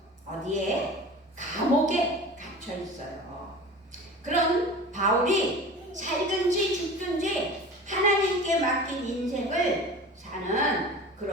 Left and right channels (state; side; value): normal; both; correlation 0.37